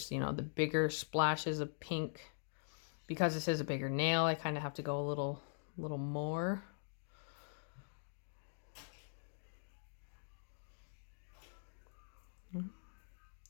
you know, the bigger splashes of pink. Because this is a bigger nail, I kind of have to go a little more.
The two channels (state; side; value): silent; right; digital silence